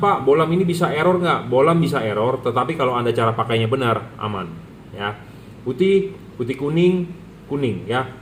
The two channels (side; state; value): both; identical; correlation 1.00